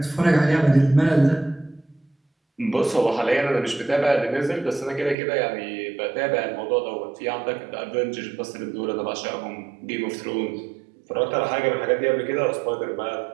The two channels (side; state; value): left; drops out; at 5.2 s